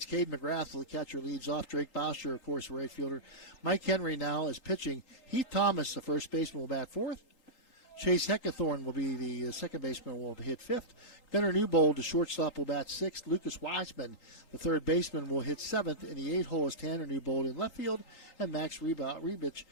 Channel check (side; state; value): right; late; 3.8 ms